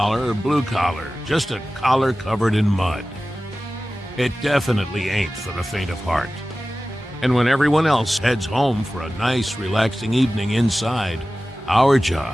or blue collar, just a collar covered in mud. It definitely ain't for the faint of heart. And when everyone else heads home for a nice, relaxing evening inside, our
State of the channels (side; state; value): both; normal; correlation 0.96